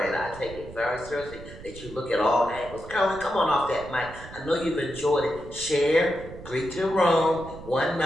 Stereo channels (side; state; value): right; noise; rumble, 15 dB below the sound